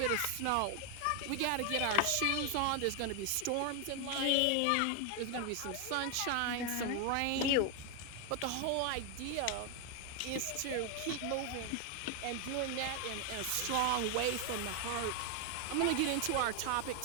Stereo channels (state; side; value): different; both; correlation 0.01